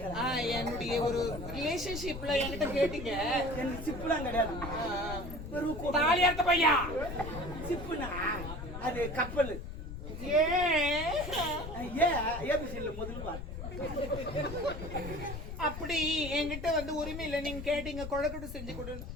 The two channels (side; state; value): left; noise; rumble, 8 dB below the sound